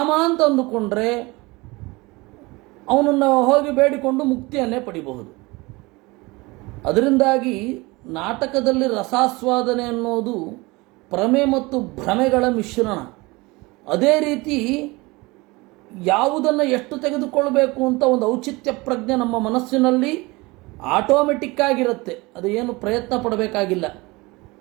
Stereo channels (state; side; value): quieter; left; 23.5 dB